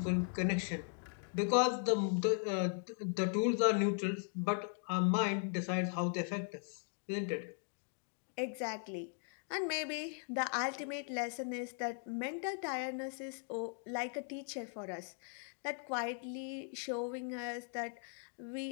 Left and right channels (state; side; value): silent; right; 52 dB below the other